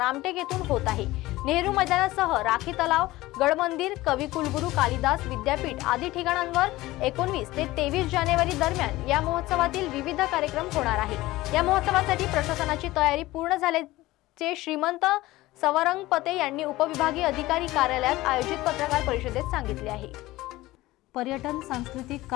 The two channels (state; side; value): quieter; right; 18.1 dB